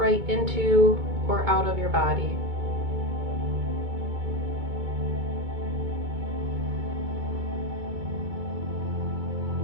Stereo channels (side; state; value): left; late; 2.2 ms